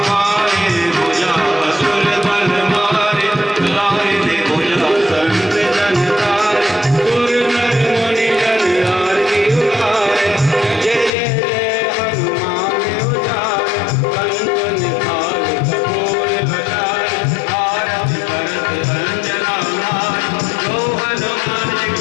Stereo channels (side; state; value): right; drops out; at 11.1 s